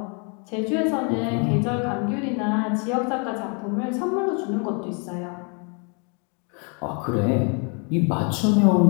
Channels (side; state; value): right; quieter; 36.0 dB